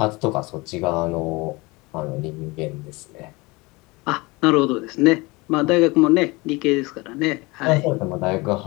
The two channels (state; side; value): quieter; right; 24.3 dB